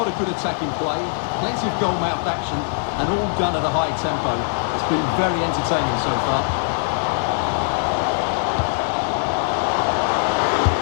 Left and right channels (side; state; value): right; silent; digital silence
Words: of good attacking play, plenty of goal-mouth action, and all done at a high tempo. It's been very entertaining so far.